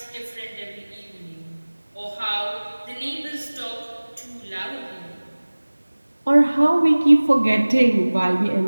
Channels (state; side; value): inverted; both; correlation -1.00